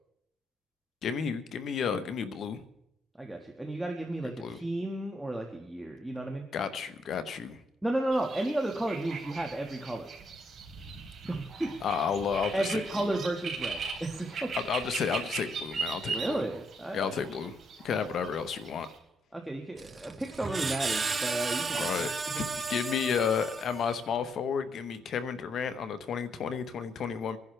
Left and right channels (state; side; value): normal; both; correlation 0.75